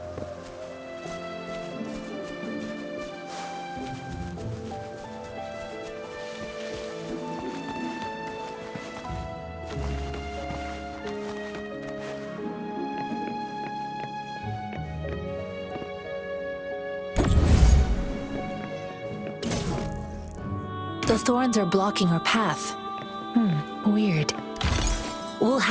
The thorns are blocking our path. Weird. We'll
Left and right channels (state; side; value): identical; both; correlation 1.00